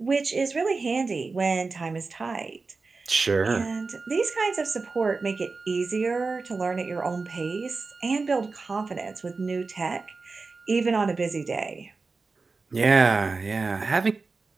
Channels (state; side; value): quieter; left; 4.1 dB